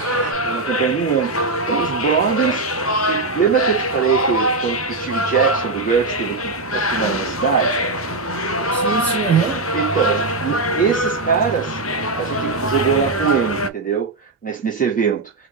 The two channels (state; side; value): quieter; left; 3.3 dB